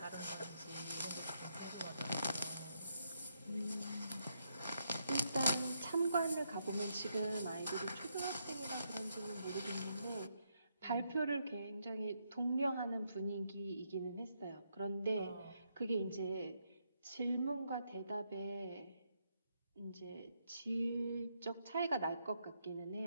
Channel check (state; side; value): inverted; both; correlation -0.78